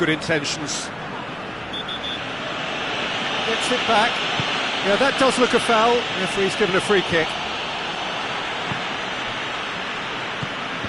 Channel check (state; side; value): noise; left; rumble, 25 dB below the sound